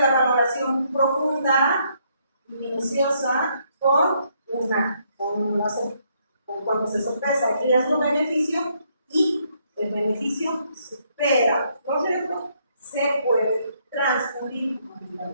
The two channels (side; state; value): both; inverted; correlation -0.72